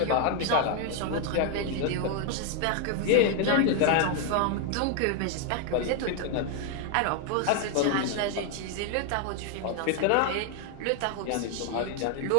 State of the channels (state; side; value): different; both; correlation 0.01